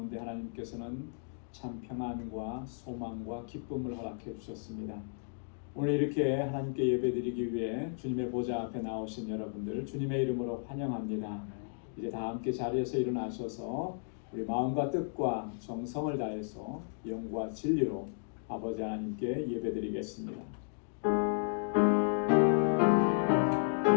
하나님께서는 참 평안과 소망과 기쁨을 허락해 주셨습니다. 오늘 이렇게 하나님께 예배드리기 위해 주님의 보좌 앞에 나오신 여러분들 주님의 이름으로 환영합니다. 이제 다 함께 자리에서 일어나셔서 우리 마음과 뜻과 정성을 다해서 영과 진리로 아버지 하나님께 예배드리겠습니다.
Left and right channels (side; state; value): right; silent; digital silence